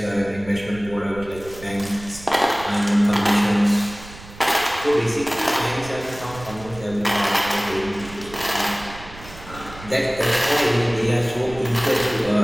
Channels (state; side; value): noise; right; rumble, 17 dB below the sound